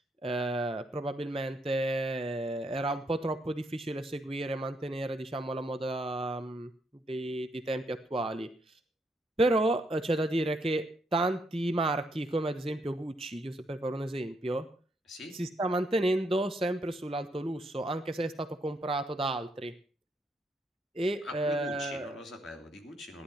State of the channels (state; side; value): normal; both; correlation 0.75